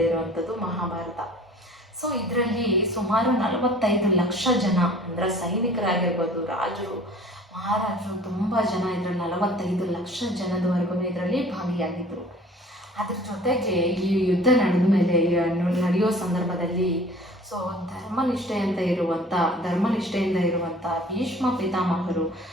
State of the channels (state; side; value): normal; both; correlation 0.48